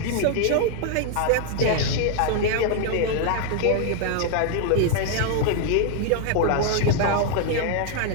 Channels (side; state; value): both; different; correlation 0.00